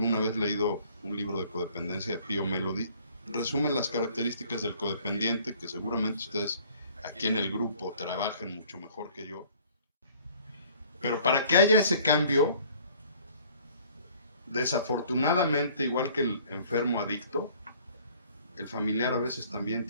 vez leído un libro de codependencia de Pia Mellody, resumen las características del codependiente, que seguramente ustedes aquí en el grupo trabajan mucho mejor que yo. Pero para que haya ese cambio, desafortunadamente, igual que el enfermo adicto, el familiar a veces también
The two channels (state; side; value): inverted; both; correlation -0.55